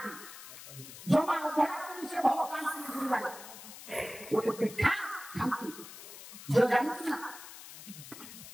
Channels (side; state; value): left; noise; hiss, 14 dB below the sound